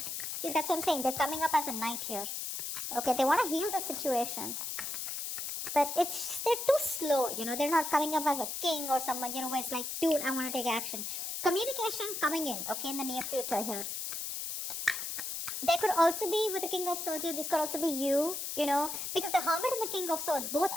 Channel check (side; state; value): left; noise; hiss, 4 dB below the sound